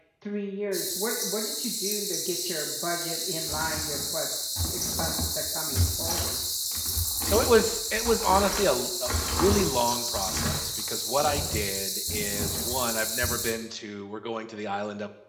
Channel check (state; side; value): identical; both; correlation 1.00